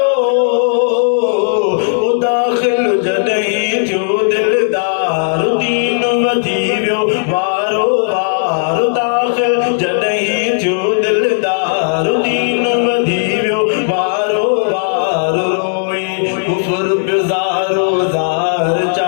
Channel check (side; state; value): right; silent; digital silence